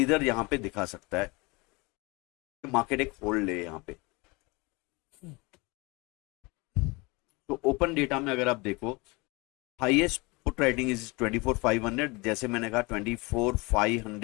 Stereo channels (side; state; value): right; quieter; 25.9 dB